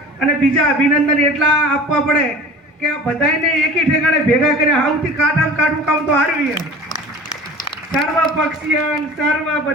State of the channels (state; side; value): normal; both; correlation 0.40